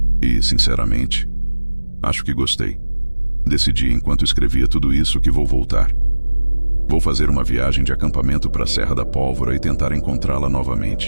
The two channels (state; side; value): inverted; both; correlation -1.00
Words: E, sinceramente, acho que gostei. Decidi enquanto escrevia tudo isso que vou voltar. Vou fazer uma viagem de acampamento para a Serra da Pólvora e tentar encontrá-la